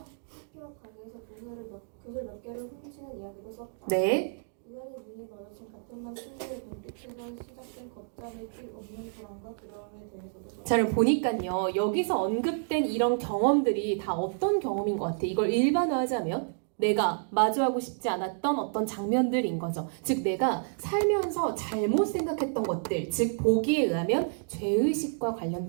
학교 앞 가게에서 구슬 몇 개를 훔치는 이야기도 썼다. 네. 우연히 눈이 마주친 같은 반 친구의 눈빛에서 시작된 걷잡을 길 없는 불안과 두려움에 대해서도 썼다. 자, 그럼 보니까요, 여기서 언급된 이런 경험들이 다 어떤 경험인 것 같아? 이걸 일반화하자면 내가 마주하고 싶지 않았던 어떤 장면들인 거죠. 즉 내가 살면서 잘못 생각했던 것들, 즉 보기에 의하면 죄의식과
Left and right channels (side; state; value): left; silent; digital silence